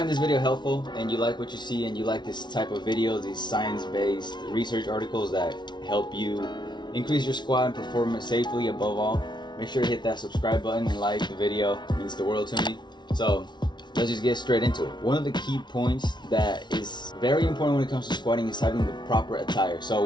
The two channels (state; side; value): late; right; 0.21 ms